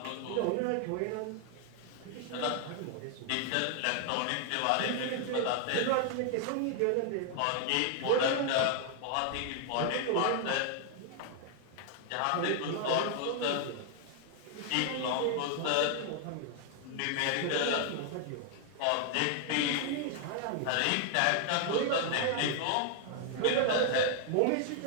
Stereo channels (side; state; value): both; different; correlation 0.00